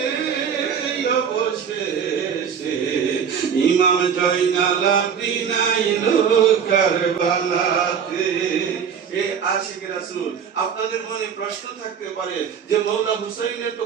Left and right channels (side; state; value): left; quieter; 7.4 dB